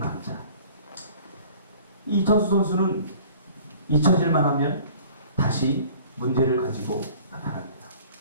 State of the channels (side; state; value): both; inverted; correlation -0.49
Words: 이천수 선수는 잊혀질만 하면 다시 문제를 가지고 나타납니다.